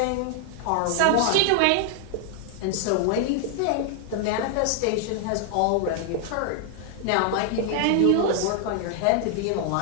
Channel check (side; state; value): both; different; correlation 0.00